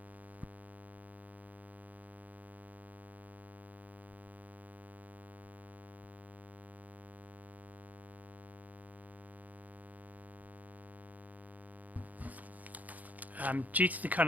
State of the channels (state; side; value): late; left; 0.079 ms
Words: Due to the